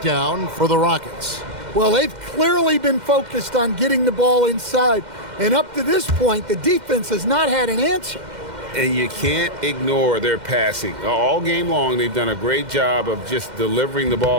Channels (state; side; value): late; left; 2.1 ms